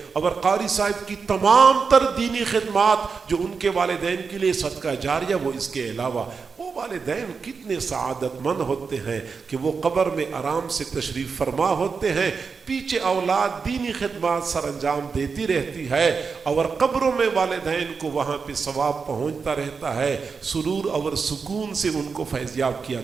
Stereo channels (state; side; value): quieter; left; 5.2 dB